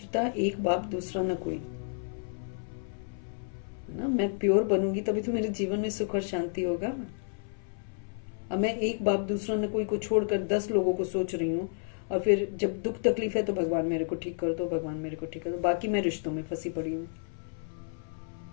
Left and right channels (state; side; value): silent; right; 57 dB below the other